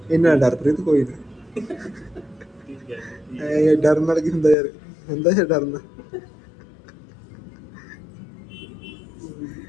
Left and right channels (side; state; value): right; drops out; at 4.5 s